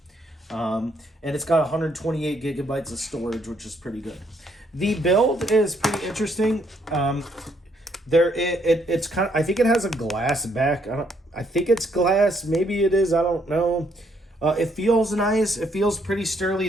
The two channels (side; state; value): both; normal; correlation 0.71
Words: And it's got 128 gigabytes of storage, which is pretty good. The build is pretty interesting. It's kind of, I think it has a glass back. I think it's glass. Maybe it is. I don't know. It feels nice. It feels pretty sturdy.